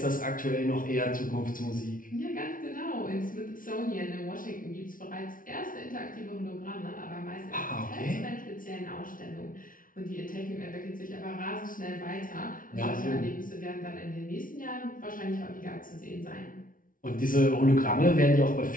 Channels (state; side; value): late; right; 0.39 ms